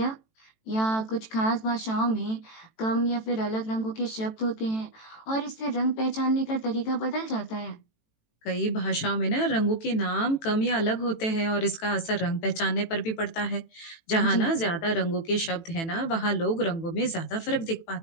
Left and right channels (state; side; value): late; right; 18 ms